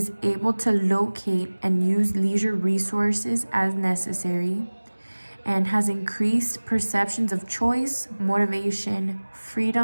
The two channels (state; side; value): inverted; both; correlation -1.00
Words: able to locate and use leisure resources as necessary, and has increased perceptions of choice, motivation,